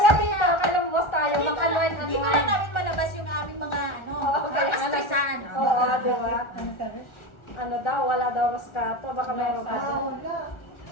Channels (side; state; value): right; late; 1.4 ms